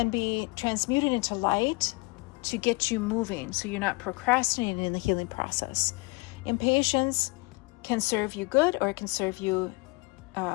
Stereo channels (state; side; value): quieter; right; 27.5 dB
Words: be transmuted into light to get you moving, so you're not procrastinating in the healing process. Impatience can serve you good, or it can serve you